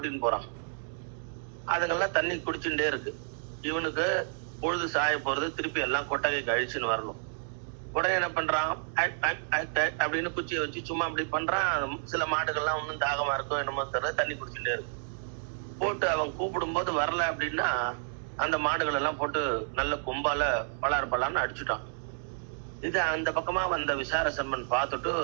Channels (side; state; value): left; silent; digital silence